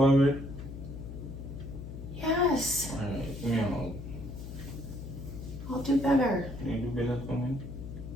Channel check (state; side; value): noise; left; hum, 9 dB below the sound